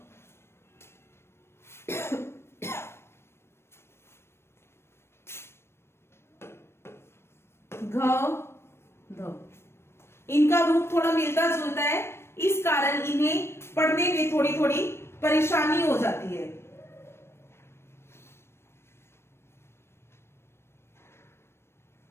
घ, ध। इनका रूप थोड़ा मिलता जुलता है, इस कारण इन्हें पढ़ने पढ़ने में थोड़ी थोड़ी परेशानी हो जाती है।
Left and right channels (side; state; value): right; late; 0.12 ms